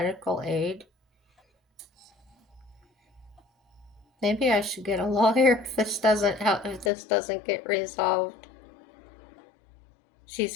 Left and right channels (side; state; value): right; drops out; at 6.9 s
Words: aid? Maybe I should get a lawyer if this doesn't help, if this doesn't get resolved.